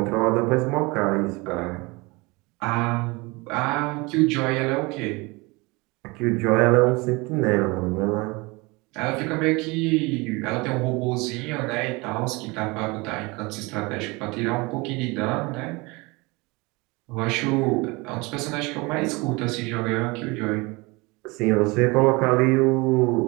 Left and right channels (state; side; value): quieter; left; 25.3 dB